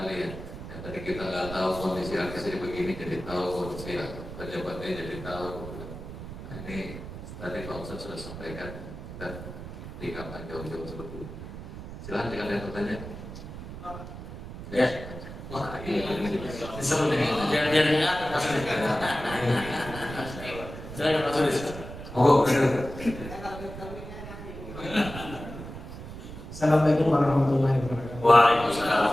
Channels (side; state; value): right; noise; rumble, 11 dB below the sound